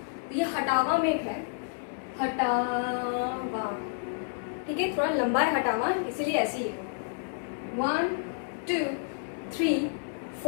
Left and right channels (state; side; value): silent; right; digital silence